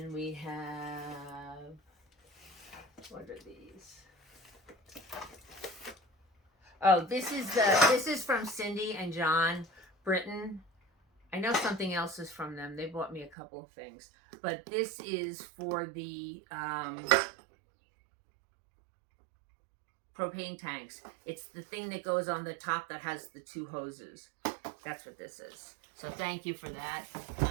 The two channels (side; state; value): left; drops out; at 13.3 s